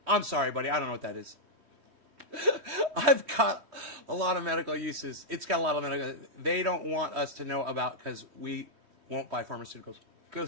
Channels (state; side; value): late; left; 3.1 ms